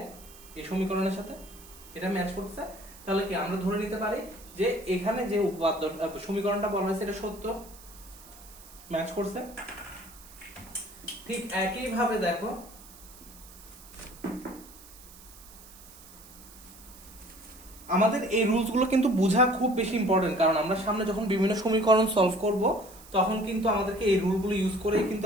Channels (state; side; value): noise; right; hiss, 20 dB below the sound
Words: এই সমীকরণের সাথে এটা ম্যাচ করতেছে। তাহলে কি আমরা ধরে নিতে পারি যে এখানে যে উপাত্ত সমীকরণটা বলা হয়েছে এটা সত্য, ম্যাচ করছে। ঠিক একই ভাবে দেখো আমাদের এই রুলস গুলো কিন্তু বোঝা খুব বেশি ইম্পর্টেন্ট, কারণ আমরা সামনে যখন বিভিন্ন সমীকরণ সলভ করব তখন কিন্তু আমাদেরকে এই রুলগুলো ইউজ করে কিন্তু